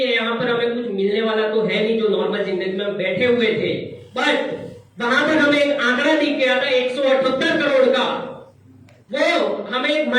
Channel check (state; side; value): identical; both; correlation 1.00